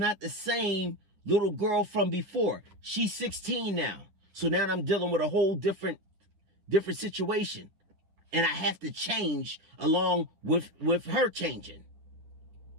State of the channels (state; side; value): late; left; 10 ms